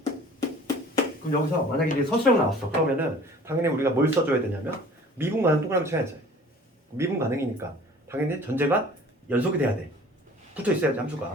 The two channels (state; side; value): normal; both; correlation 0.48